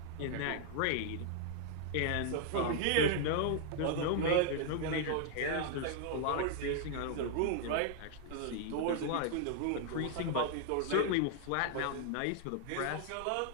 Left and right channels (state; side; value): different; both; correlation 0.00